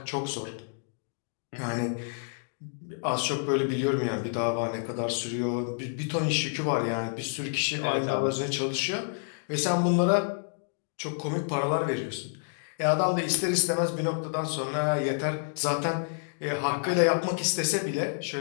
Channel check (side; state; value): right; silent; digital silence